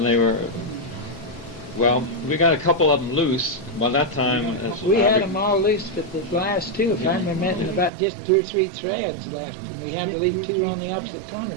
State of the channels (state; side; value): drops out; left; at 7.9 s